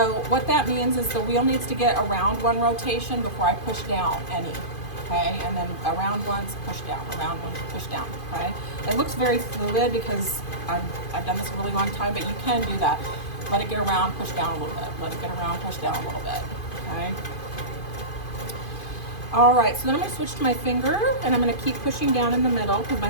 what that means is the wheel needs to get around one rotation before I push down any, okay? And then around once, push down, around once, push down, okay? It looks very fluid because I've done this a really long time, but you can do that. Let it get around, push down a little bit. Let it get around, push down a little bit, okay? All right, so then I'm gonna switch to my finger and I'm gonna keep pushing down in the middle because my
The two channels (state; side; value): late; right; 2.5 ms